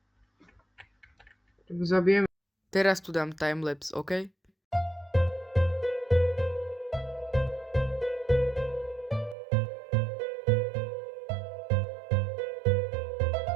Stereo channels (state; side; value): drops out; left; at 9.3 s